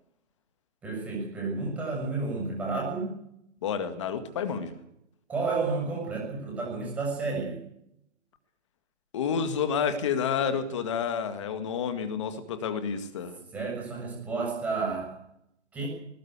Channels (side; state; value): both; normal; correlation 0.05